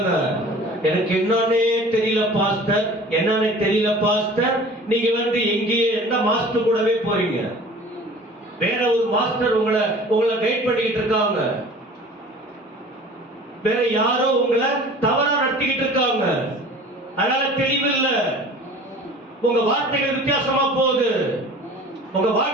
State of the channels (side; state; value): both; normal; correlation 0.44